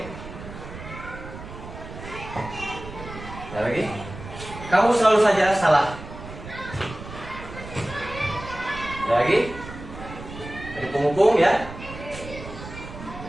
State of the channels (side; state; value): right; noise; rumble, 12 dB below the sound